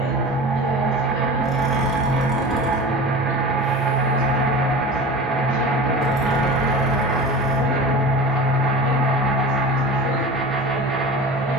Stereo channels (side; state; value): both; normal; correlation 0.34